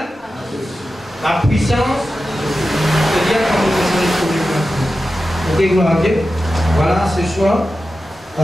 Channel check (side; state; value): both; normal; correlation 0.92